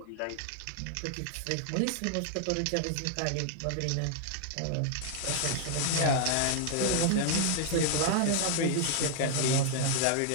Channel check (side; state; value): both; different; correlation 0.00